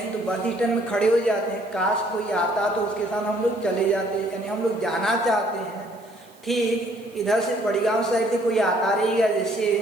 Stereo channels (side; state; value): right; noise; hiss, 29 dB below the sound